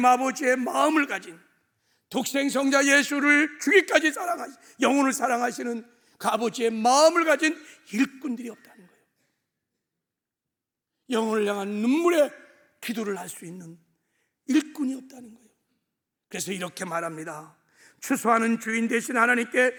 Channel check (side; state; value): both; identical; correlation 1.00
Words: 아버지의 마음을 가진, 독생성자 예수를 주기까지 사랑하시, 영혼을 사랑하시는 그 아버지의 마음을 가진 일꾼들이 없다는 거예요. 영혼을 향한 눈물의 기도를 할 수 있는 일꾼이 없다는 거예요. 그래서 이렇게 말합니다. 추수하는 주인 되신 하나님께